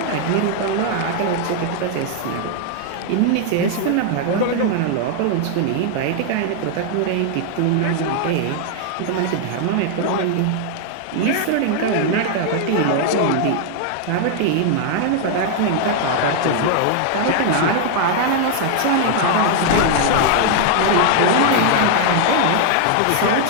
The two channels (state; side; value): different; both; correlation 0.00